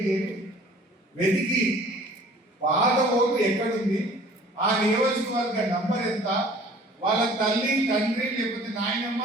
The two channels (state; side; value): normal; both; correlation 0.51